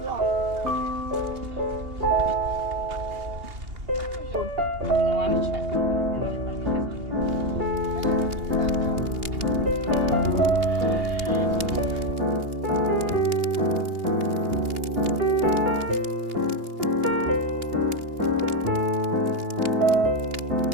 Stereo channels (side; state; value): left; late; 2.8 ms